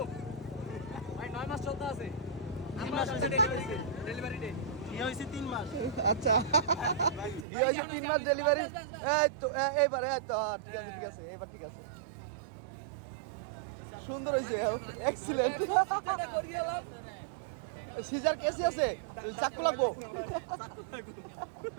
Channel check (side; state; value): left; drops out; at 7.5 s